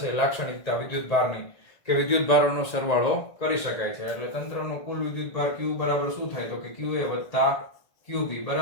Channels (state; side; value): late; right; 1.9 ms